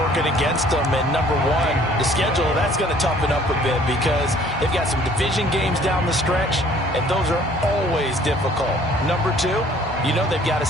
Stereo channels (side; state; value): both; normal; correlation 0.56